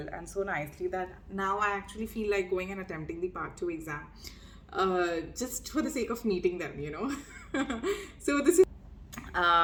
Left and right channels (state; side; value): identical; both; correlation 1.00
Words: and so nicely that now I actually feel like going and attempting the Part 2 exam. Just for the sake of meeting them. So this is